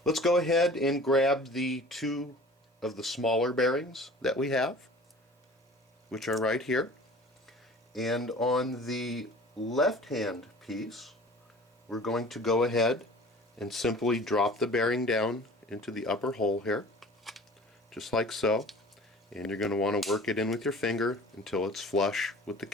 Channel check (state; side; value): normal; both; correlation 0.44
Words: Let's go ahead and grab the two of the smaller bearings that we have, which are right here. And on the left-hand piece, we're going to go ahead and simply drop the bearing down into the upper hole here, just like so. And you're going to want to work it in with your finger until it's flush with the